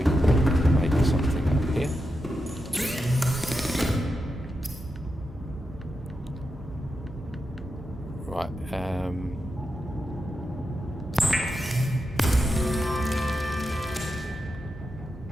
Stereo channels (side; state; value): both; normal; correlation 0.88